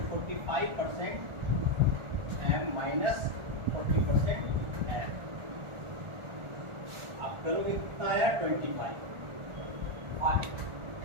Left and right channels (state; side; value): late; left; 1.4 ms